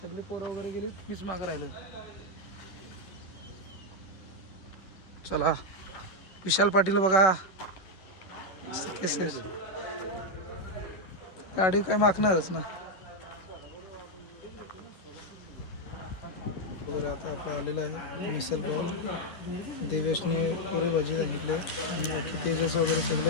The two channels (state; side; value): late; right; 11 ms